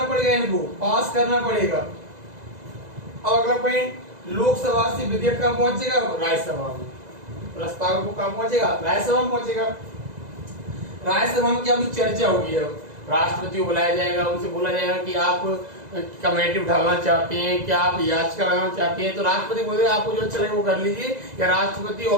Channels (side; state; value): left; late; 2.0 ms